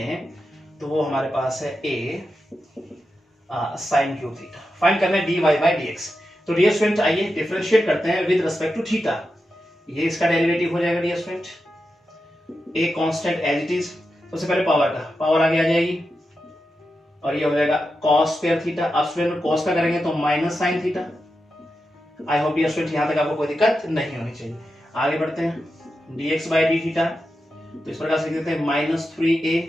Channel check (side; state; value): both; normal; correlation 0.89